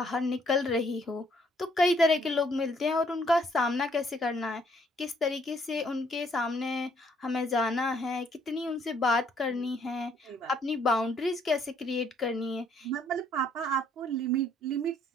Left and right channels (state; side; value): normal; both; correlation 0.66